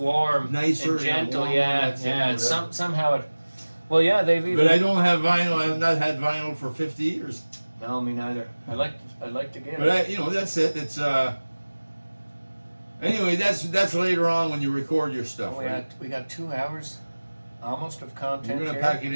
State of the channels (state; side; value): inverted; both; correlation -1.00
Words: Nicer, and gentle, warm, yeah, that's it, yeah. It's whatever. somehow it. Well, yeah, they've even. But I don't have vinyl. I have not had vinyl for 50 years. No, me neither. I like to get But it. that's it. It's Anyway, that's later on when you record your stuff. Right? We got 2 hours, almost of content. We're gonna here. pack it